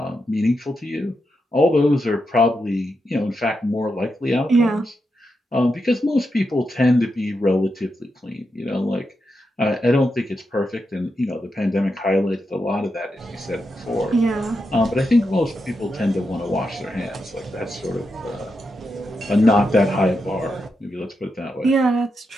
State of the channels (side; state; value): both; normal; correlation 0.86